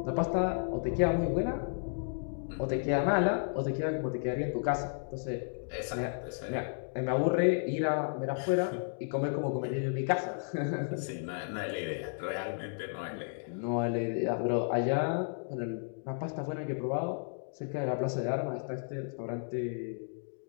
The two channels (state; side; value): silent; right; digital silence